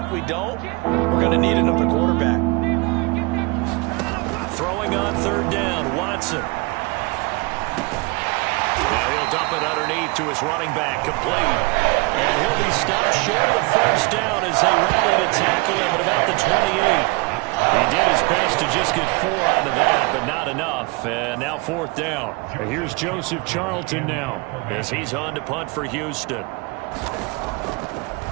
we don't, we're going to need another quarterback. Throwing on 3rd down, Watson. Now he'll dump it underneath to his running back, complete. And he'll be stopped short of the first down as they rally to tackle him at about the 28. He did his best to just get 4 out of that, but not enough. And now 4th down. And here's Joseph Charlton now, as he's on to punt for Houston.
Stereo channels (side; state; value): left; quieter; 26.9 dB